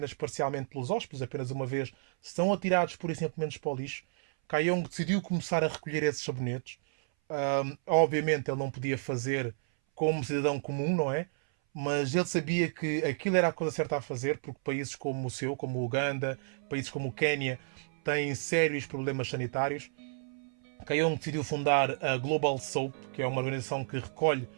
parcialmente pelos hóspedes, apenas uma vez, são atirados por e simplesmente para o lixo, Kayong decidiu começar a recolher esses sabonetes. Obviamente ele não podia fazer como cidadão comum, não é? Mas ele sabia que aquilo era a coisa certa a fazer, porque países como o seu, como o Uganda, países como o Quénia, têm sérios problemas sanitários. Kayong decidiu fundar a Global Soap, que é uma organização que recolhe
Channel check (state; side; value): silent; left; 57 dB below the other